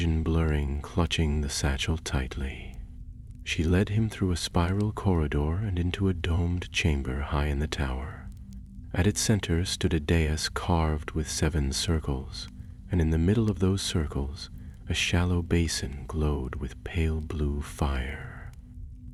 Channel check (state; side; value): identical; both; correlation 1.00